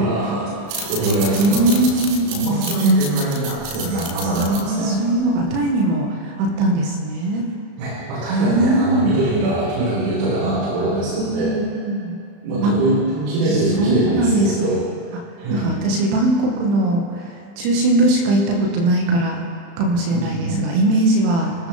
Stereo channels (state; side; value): late; left; 35 ms